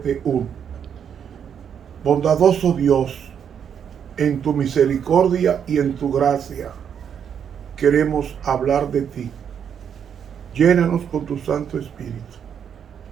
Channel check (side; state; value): left; quieter; 8.1 dB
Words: Bondadoso Dios, en tu misericordia y en tu gracia queremos hablar de ti. Llénanos con tu Santo Espíritu